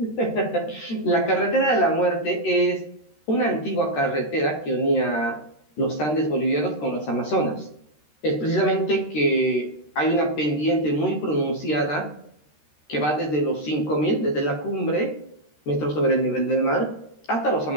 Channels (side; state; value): right; late; 13 ms